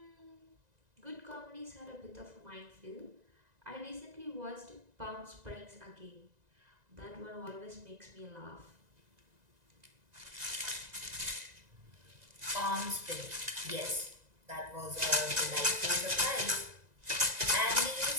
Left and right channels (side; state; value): left; late; 2.0 ms